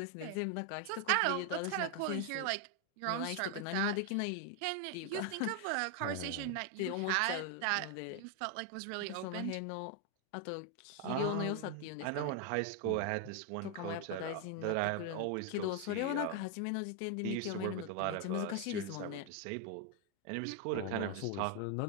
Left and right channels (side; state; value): both; different; correlation 0.00